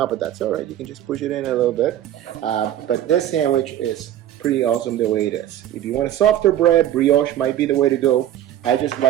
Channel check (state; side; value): quieter; left; 11.9 dB